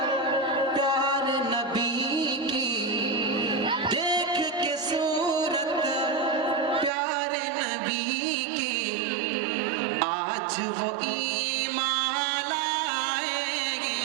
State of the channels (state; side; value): drops out; left; at 6.9 s